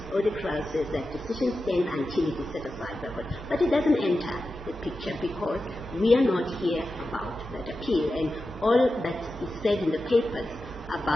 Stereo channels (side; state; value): both; normal; correlation 0.92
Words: Odekra says that decision stands until it is set aside by court. But it doesn't enter the picture because we are not here about that appeal. And all that is said in the papers